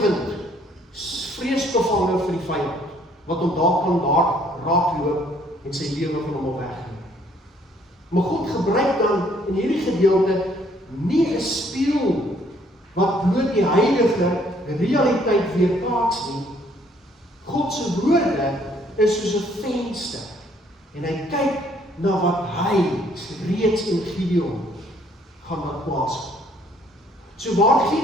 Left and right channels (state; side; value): normal; both; correlation 0.64